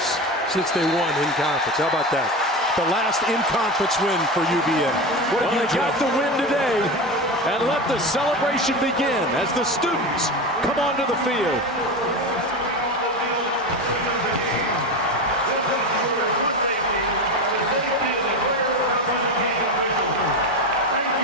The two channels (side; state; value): both; normal; correlation 0.22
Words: since they won in conference. How about that? The last in-conference win for UVA. Well, they got the win today, and let the celebration begin as the students come onto the field.